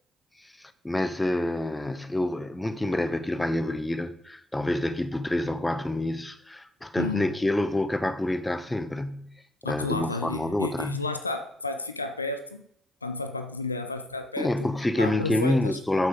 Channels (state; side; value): normal; both; correlation 0.73